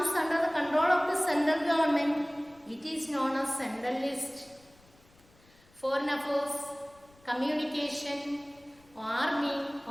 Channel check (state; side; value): noise; left; rumble, 29 dB below the sound